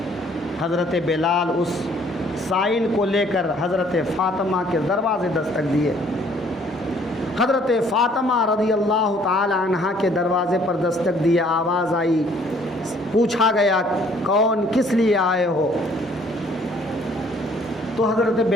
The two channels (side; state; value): both; normal; correlation 0.60